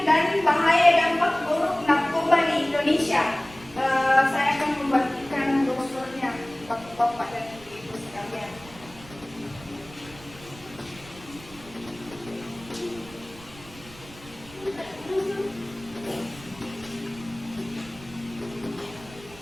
dan bahaya dampak buruk narkoba di Indonesia. Saya akan membagikan brosurnya Bapak-bapak dan Ibu sekalian.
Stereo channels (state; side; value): noise; right; rumble, 19 dB below the sound